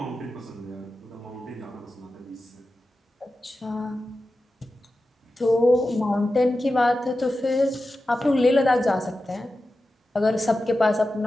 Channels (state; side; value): normal; both; correlation 0.93